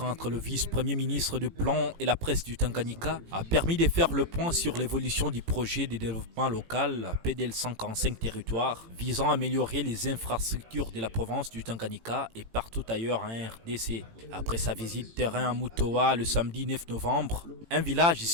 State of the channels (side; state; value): left; late; 18 ms